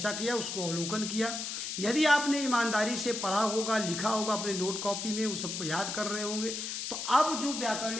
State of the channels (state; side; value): noise; left; hiss, 4 dB below the sound